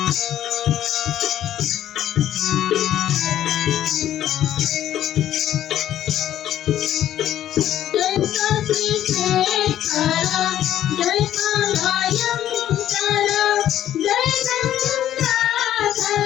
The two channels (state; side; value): quieter; right; 11.7 dB